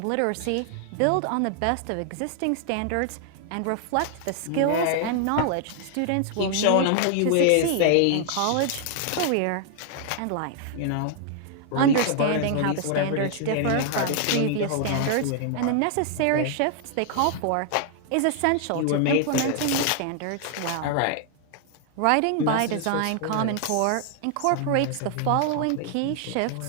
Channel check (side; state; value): both; different; correlation 0.00